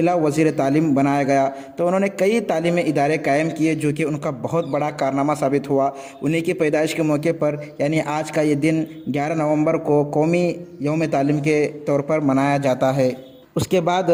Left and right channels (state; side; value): identical; both; correlation 1.00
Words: वज़ीर तालीम बनाया गया। तो उन्होंने कई तालीमी इदारे कायम किए, जो कि उनका बहुत बड़ा कारनामा साबित हुआ। उन्हीं की पैदाइश के मौके पर यानी आज का ये दिन 11 नवंबर को कौमी यौम तालीम के तौर पर मनाया जाता है। उसके बाद